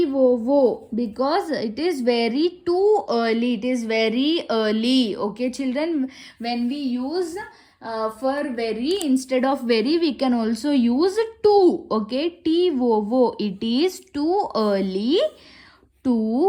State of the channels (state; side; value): identical; both; correlation 1.00